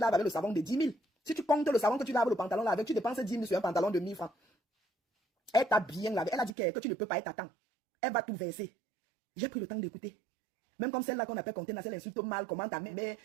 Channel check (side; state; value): left; drops out; at 6.5 s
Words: avec le savon de 10 000. Si tu comptes le savon que tu laves le pantalon là avec, tu dépenses 10 000 sur un pantalon de 1000 francs. Elle t'a bien lavé. Elle a dit que tu ne peux pas être à temps. Elle va tout verser. J'ai pris le temps d'écouter. Même comme celle-là qu'on appelle Contenance, elle insulte mal, comment ta mère,